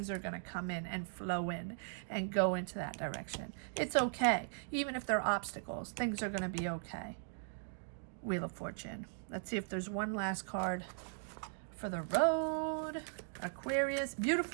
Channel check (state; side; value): silent; left; digital silence